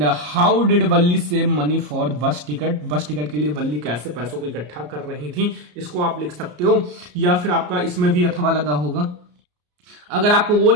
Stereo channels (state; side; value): late; left; 34 ms